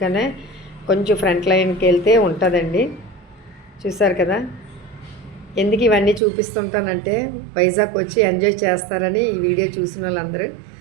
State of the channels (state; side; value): drops out; left; at 6.2 s